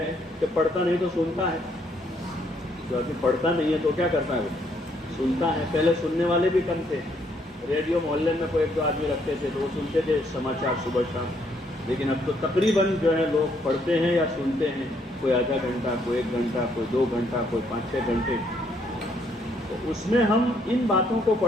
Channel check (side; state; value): both; normal; correlation 0.70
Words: کہ پڑھتا نہیں تو سنتا ہے، جو آدمی پڑھتا نہیں ہے تو کیا کرتا ہے، وہ سنتا ہے۔ پہلے سننے والے بھی کم تھے، ریڈیو محلے میں کوئی 1-2 آدمی رکھتے تھے تو وہ سنتے تھے سماچار صبح شام، لیکن اب تو تقریباً جو ہے لوگ پڑھتے ہیں یا سنتے ہیں، کوئی آدھا گھنٹہ، کوئی 1 گھنٹہ، کوئی 2 گھنٹہ، کوئی 5-6 گھنٹے۔ تو اس میں ہم ان باتوں کو